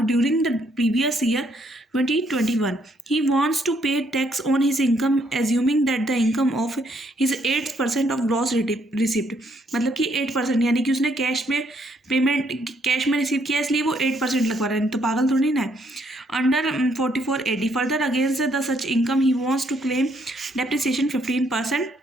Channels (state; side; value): normal; both; correlation 0.71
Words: during the previous year 2021. He wants to pay tax on his income assuming that the income of his 8% of gross receipt, मतलब कि 8%, यानी कि उसने cash में payment cash में receive किया इसलिए वो 8% लगवा रहा है, तो पागल थोड़ी ना है। Under 44 AD further against the such income he wants to claim depreciation 15%।